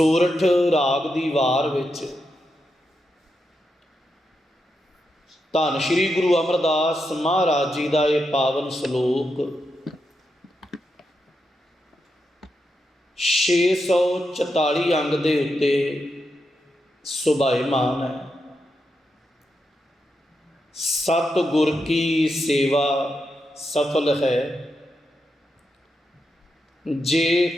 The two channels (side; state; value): both; normal; correlation 0.85